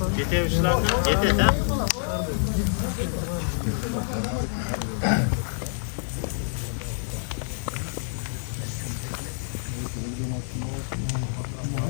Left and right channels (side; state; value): right; silent; digital silence